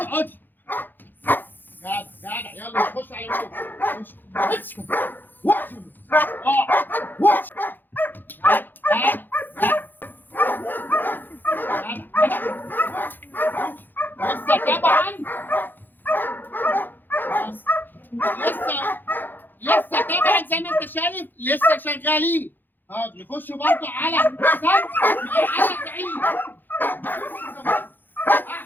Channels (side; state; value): right; late; 0.090 ms